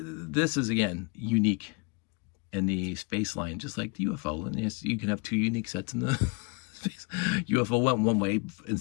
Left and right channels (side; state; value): right; quieter; 30.8 dB